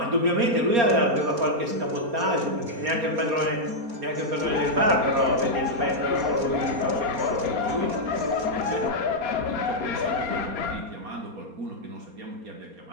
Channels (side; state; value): left; late; 4.3 ms